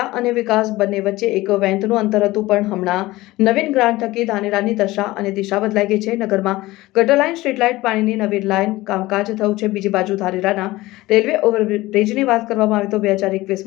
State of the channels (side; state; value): right; quieter; 18.7 dB